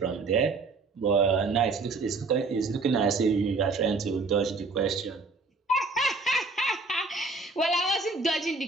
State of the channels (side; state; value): left; quieter; 3.8 dB